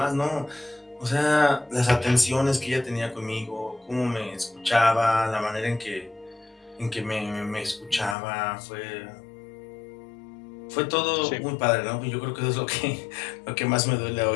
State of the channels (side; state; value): right; drops out; at 8.2 s